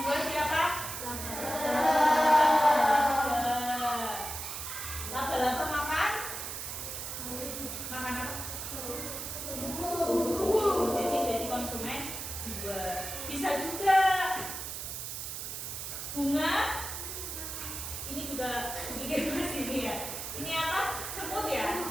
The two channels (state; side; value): noise; right; hiss, 6 dB below the sound